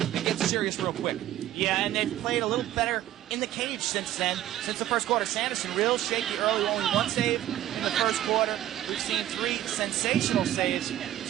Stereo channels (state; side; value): quieter; left; 13.1 dB